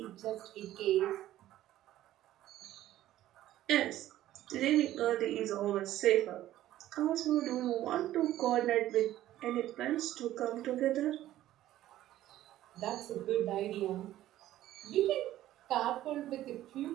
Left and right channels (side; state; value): left; quieter; 13.8 dB